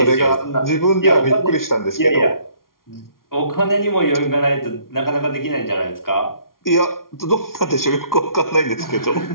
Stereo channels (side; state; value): right; late; 0.92 ms